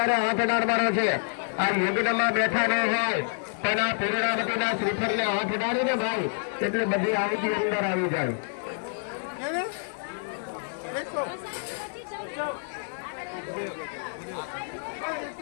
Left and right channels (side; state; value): right; silent; digital silence